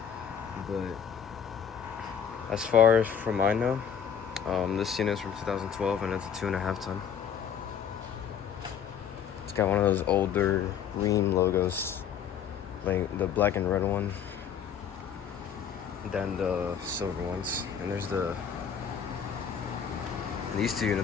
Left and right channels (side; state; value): right; quieter; 8.0 dB